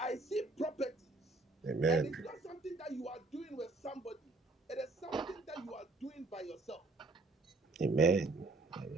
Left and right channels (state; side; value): quieter; left; 3.2 dB